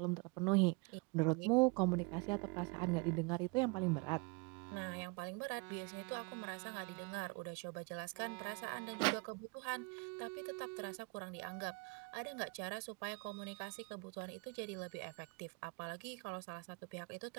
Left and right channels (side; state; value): left; quieter; 29.7 dB